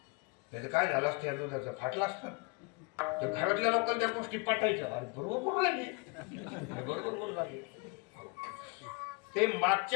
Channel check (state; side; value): quieter; right; 29.6 dB